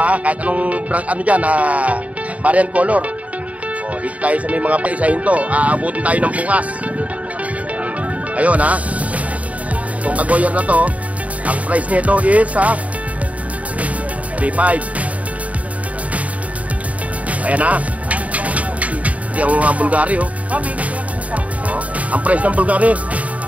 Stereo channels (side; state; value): left; late; 0.068 ms